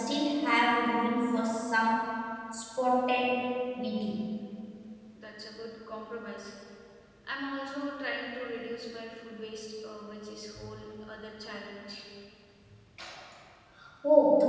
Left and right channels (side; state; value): both; identical; correlation 1.00